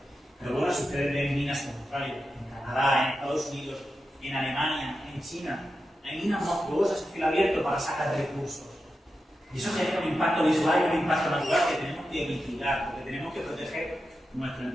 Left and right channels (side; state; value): both; normal; correlation 0.90